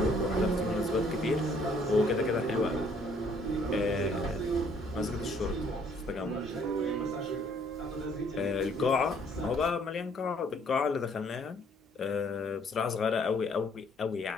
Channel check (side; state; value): both; normal; correlation 0.62